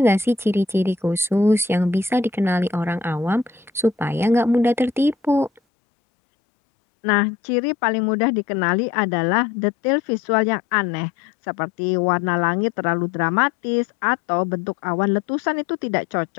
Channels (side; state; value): right; drops out; at 5.6 s